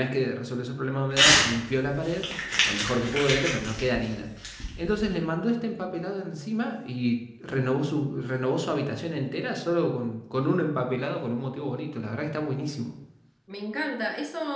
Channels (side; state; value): both; identical; correlation 1.00